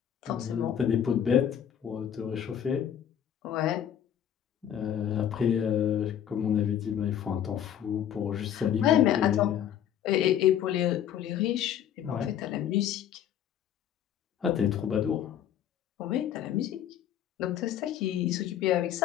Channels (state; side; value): quieter; right; 9.9 dB